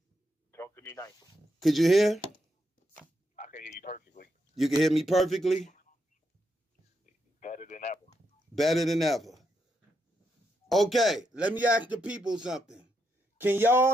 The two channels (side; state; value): both; normal; correlation 0.81